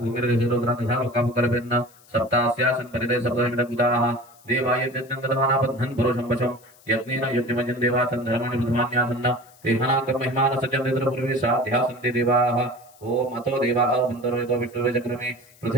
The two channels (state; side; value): noise; left; hiss, 27 dB below the sound